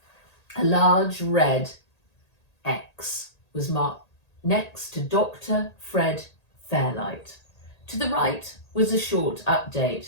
A large red X was marked next to Dr. Fred Fairlight. To the right was a short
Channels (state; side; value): late; right; 1.8 ms